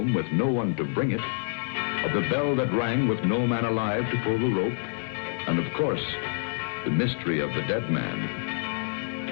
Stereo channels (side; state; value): right; silent; 60 dB below the other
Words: with no one to bring it, of the bell that rang with no man alive to pull the rope, and of course, the mystery of the dead man.